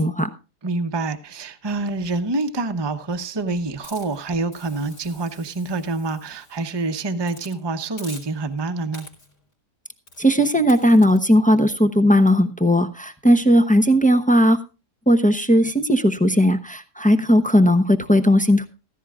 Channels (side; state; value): both; normal; correlation 0.75